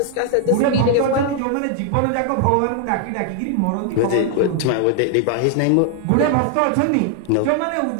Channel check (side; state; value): both; different; correlation 0.00